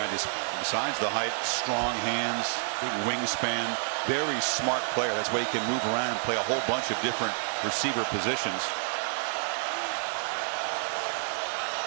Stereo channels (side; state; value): left; silent; digital silence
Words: just besides the height, strong hands, big wingspan, very smart player. That's why he can move around and play a whole bunch of different receiver positions.